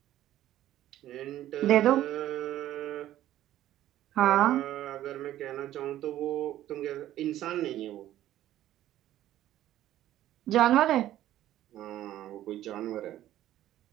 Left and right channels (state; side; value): quieter; left; 13.3 dB